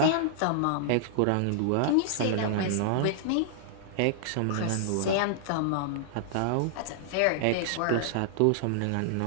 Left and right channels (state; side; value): different; both; correlation -0.01